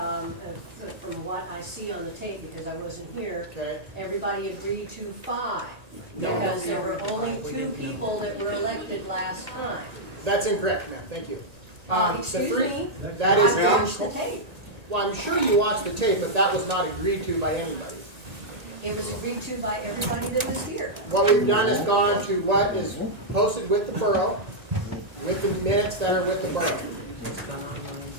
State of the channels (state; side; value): late; left; 1.8 ms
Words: what I see on the tape, because I wasn't here, everybody agreed to 5. Because there were only 2 people that were elected last time. That's incorrect, ma'am. Thank you. Excuse me, that is I watched the tape. Well, I'm sure you watched the tape, but that was not agreed to by anybody. It was agreed to by everybody that was here. What we've done is gone to what is posted with the borough, with the minutes that are with the borough. It's gone